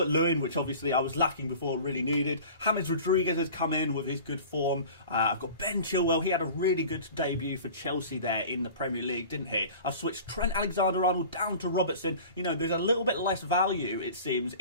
which obviously I was lacking before, really needed. James Rodriguez has come in with his good form. I've got Ben Chilwell. He had a really good debut for Chelsea there in the Premier League, didn't he? I've switched Trent Alexander-Arnold down to Robertson. You know, there's a little bit less value, it seems,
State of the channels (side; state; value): both; inverted; correlation -0.40